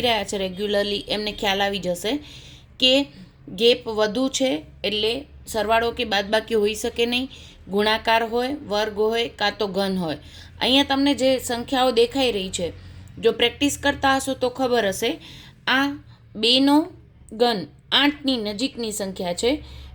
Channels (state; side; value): identical; both; correlation 1.00